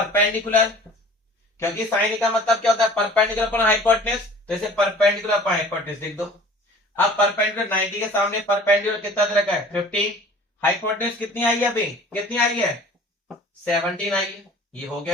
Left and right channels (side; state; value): both; normal; correlation 0.47